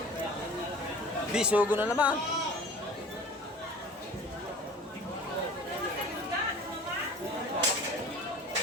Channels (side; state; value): both; normal; correlation 0.42